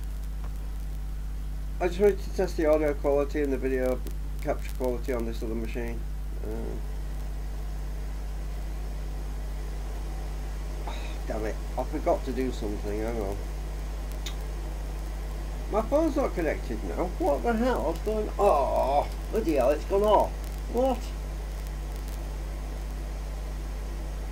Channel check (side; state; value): both; identical; correlation 1.00